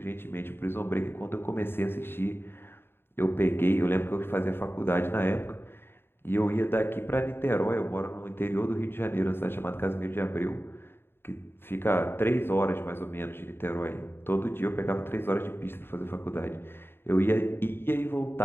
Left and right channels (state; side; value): late; right; 0.11 ms